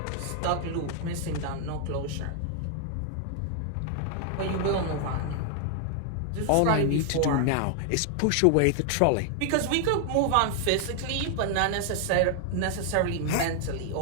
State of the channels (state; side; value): different; both; correlation 0.00